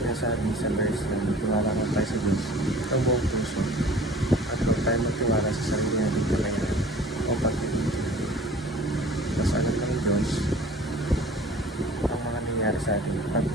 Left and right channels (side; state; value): both; normal; correlation 0.46